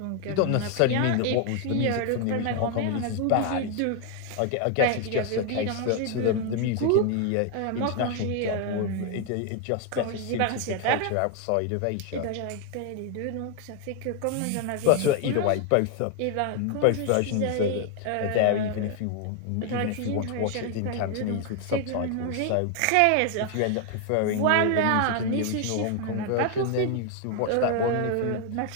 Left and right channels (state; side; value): different; both; correlation 0.01